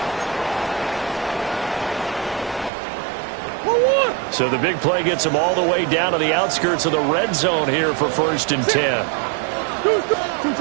So the big play gets him all the way down to the outskirts of the red zone here for 1st and 10.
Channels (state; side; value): drops out; left; at 2.7 s